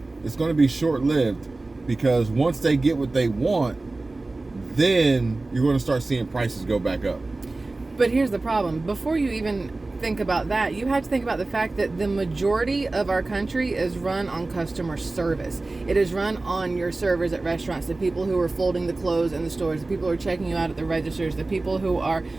it's going to be short-lived, because once they get what they want, then you're going to start seeing prices go back up. But here's the problem. Before you even think about that, you have to think about the fact that the majority of our country is run on customer service. It is run on your servers at restaurants, the people who are folding the clothes in the stores, the people who are checking you out at the registers, the people who are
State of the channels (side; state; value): left; quieter; 3.2 dB